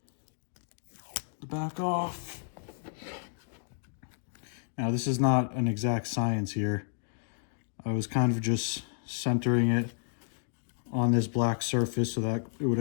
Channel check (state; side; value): silent; right; digital silence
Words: the back off. Now, this is not an exact science here. I was kind of just centering it on this black surface so that it would